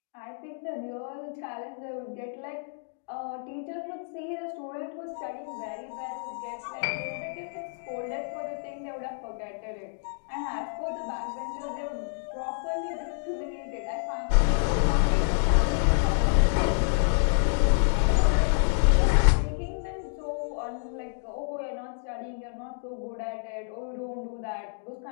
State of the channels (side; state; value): right; silent; digital silence